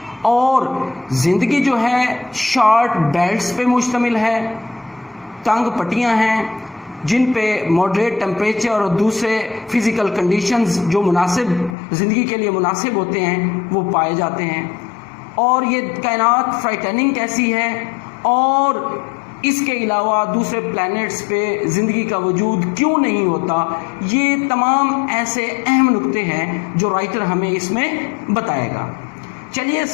और ज़िंदगी जो है शॉर्ट बेल्ट्स पे मुश्तमिल है, तंग पट्टियाँ हैं जिन पे मॉडरेट टेम्परेचर और दूसरे फिज़िकल कंडीशंस जो मुनासिब ज़िंदगी के लिए मुनासिब होते हैं वो पाए जाते हैं। और ये कायनात फ्राइटनिंग कैसी है, और इसके अलावा दूसरे प्लैनेट्स पे ज़िंदगी का वजूद क्यों नहीं होता, ये तमाम ऐसे अहम नुक्ते हैं जो राइटर हमें इसमें बताएगा। चलिए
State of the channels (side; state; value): right; drops out; at 11.8 s